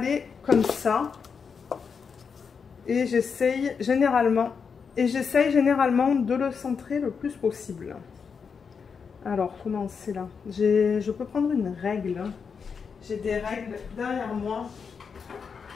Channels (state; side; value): quieter; right; 6.0 dB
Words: comme ça. Et j'essaye généralement de le centrer le plus possible. Alors, comment c'est là? Je peux prendre une règle. J'ai des règles derrière moi.